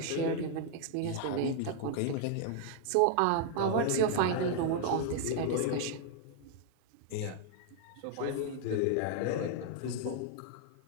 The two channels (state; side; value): different; both; correlation 0.00